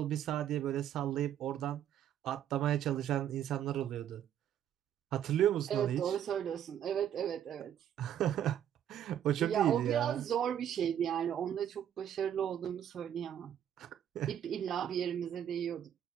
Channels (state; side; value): quieter; left; 10.1 dB